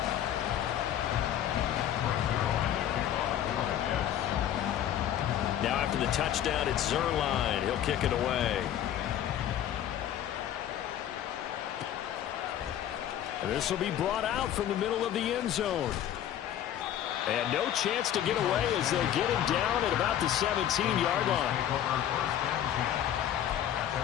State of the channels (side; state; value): right; quieter; 10.9 dB